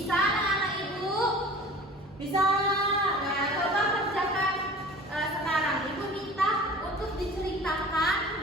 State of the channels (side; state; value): both; normal; correlation 0.42